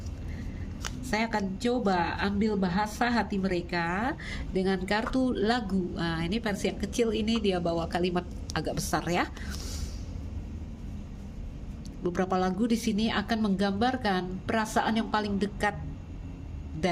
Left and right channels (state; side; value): identical; both; correlation 1.00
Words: Saya akan coba ambil bahasa hati mereka dengan kartu lagu. Nah, ini versi yang kecil, ini dia bawa kalimat agak besar ya. Beberapa lagu di sini akan menggambarkan perasaan yang paling dekat